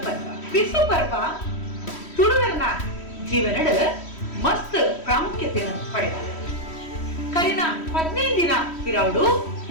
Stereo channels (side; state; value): right; late; 3.1 ms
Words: ಪರ್ವ ಬಿಸು ಪರ್ವ ತುಳುವರನ ಜೀವನದ ಮಸ್ತ್ ಪ್ರಾಮುಖ್ಯತೆಯನ್ನು ಪಡೆದಿದೆ. ಕರಿನ 15 ದಿನ ಇರವಡು